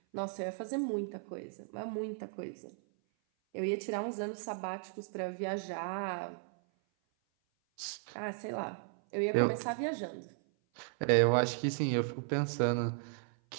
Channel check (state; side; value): silent; left; 54 dB below the other